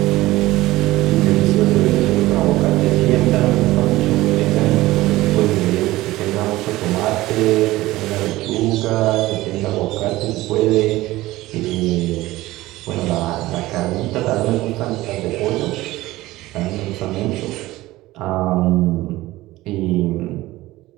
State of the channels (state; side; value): quieter; left; 17.7 dB